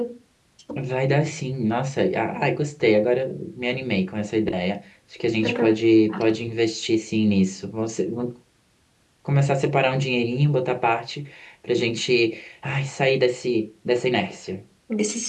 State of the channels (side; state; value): both; identical; correlation 1.00